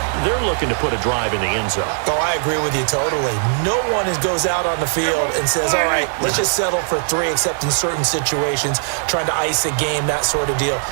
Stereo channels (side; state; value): left; silent; digital silence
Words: they're looking to put a drive in the end zone. Oh, I agree with you totally. No one goes out on the field and says, all right, let's just settle for 3, except in certain situations, trying to ice a game, that sort of deal.